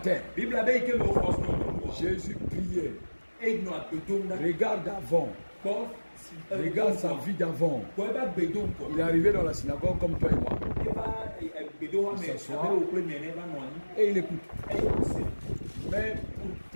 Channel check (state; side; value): inverted; both; correlation -1.00